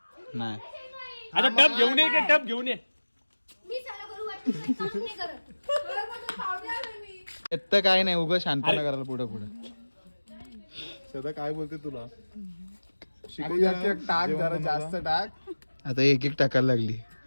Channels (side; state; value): both; inverted; correlation -1.00